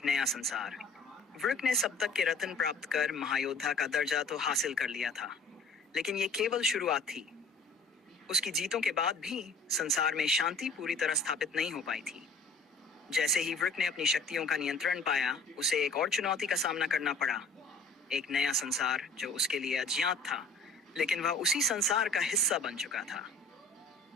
नया संसार। वृक ने सप्तक के रत्न प्राप्त कर महायोद्धा का दर्जा तो हासिल कर लिया था, लेकिन ये केवल शुरुआत थी। उसकी जीतों के बाद भी संसार में शांति पूरी तरह स्थापित नहीं हो पाई थी। जैसे ही वृक ने अपनी शक्तियों का नियंत्रण पाया, उसे एक और चुनौती का सामना करना पड़ा। एक नया संसार जो उसके लिए अज्ञात था, लेकिन वह उसी संसार का हिस्सा बन चुका था।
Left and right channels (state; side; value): quieter; right; 3.4 dB